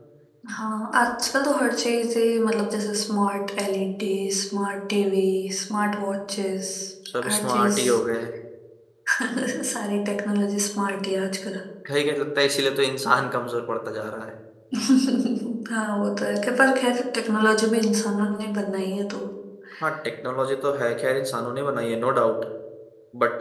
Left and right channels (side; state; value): both; identical; correlation 1.00